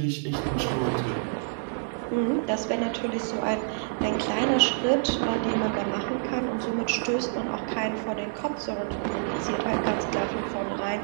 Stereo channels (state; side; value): silent; left; 60 dB below the other